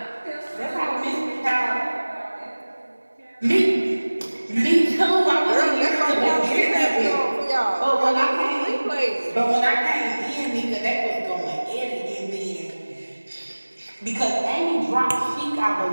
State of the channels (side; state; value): both; inverted; correlation -1.00